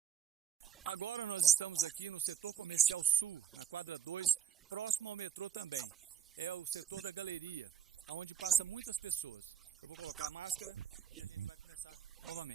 Agora nós estamos aqui no setor comercial sul, na quadra 2, próximo ao metrô também. É o setor da galeria, onde passa muitas pessoas. Eu vou colocar a máscara e a gente vai começar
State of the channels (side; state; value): left; quieter; 8.9 dB